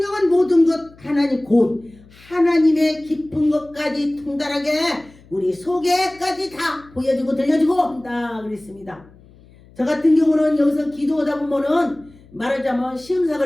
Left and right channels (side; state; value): left; noise; hum, 25 dB below the sound